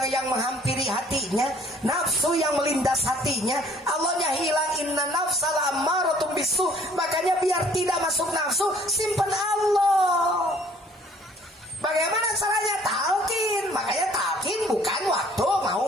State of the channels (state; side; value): normal; both; correlation 0.57